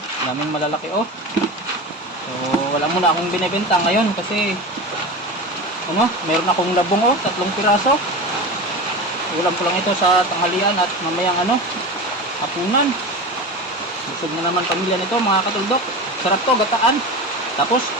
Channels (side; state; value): both; normal; correlation 0.27